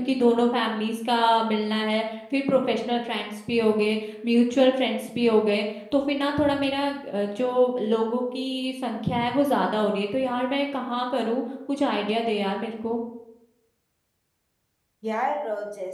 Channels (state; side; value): identical; both; correlation 1.00